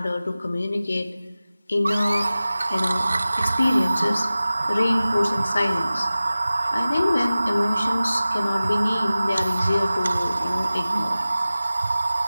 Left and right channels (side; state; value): both; inverted; correlation -0.96